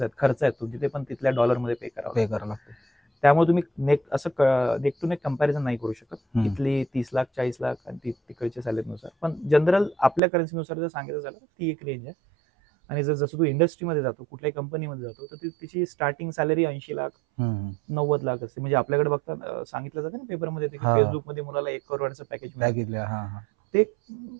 खर्च आहेत तुमचे, ते पण तिथल्या डॉलरमध्ये पे करावं लागतं. त्यामुळे तुम्ही नेक टू नेक कंपॅरिझन नाही करू शकत. इथली 30 लाख 40 लाख आणि तिकडच्या सॅलरीनुसार. पण जनरल आपल्या करन्सीनुसार जर सांगायचं झालं तर ती एक रेंज आहे. आणि जसं तू इंडस्ट्रीमध्ये जातो, कुठल्याही कंपनीमध्ये जातो, तर तिची स्टार्टिंग सॅलरी 80 लाख 90 लाख असते. म्हणजे आपल्याकडे बघता सांगितलं जातं ना पेपरमध्ये, की फेसबुकमध्ये मुलाला 1 करोडचं पॅकेज मिळालं. ते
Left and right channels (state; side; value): drops out; left; at 10.2 s